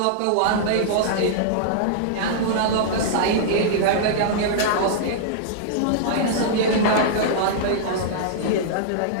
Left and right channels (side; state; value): both; different; correlation -0.02